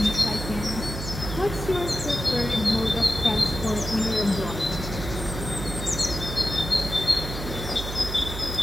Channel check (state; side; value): noise; right; hum, 7 dB below the sound